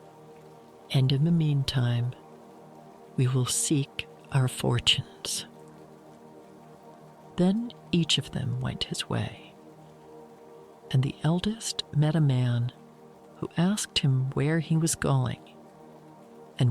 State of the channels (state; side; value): identical; both; correlation 1.00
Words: And in the meantime, we will seek our fortunes." Then each of them went his way, and the eldest met a man who asked him where he was going